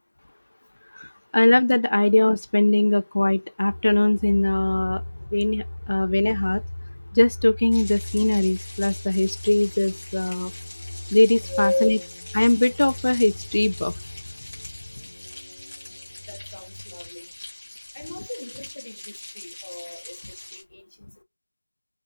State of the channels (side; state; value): both; inverted; correlation -1.00